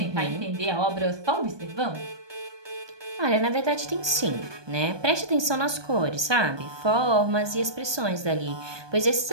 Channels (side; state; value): left; late; 1.2 ms